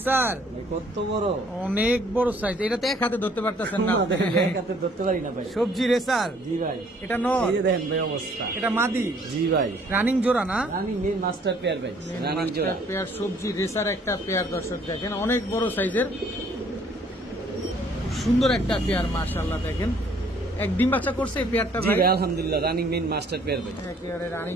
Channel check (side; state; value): both; normal; correlation 0.60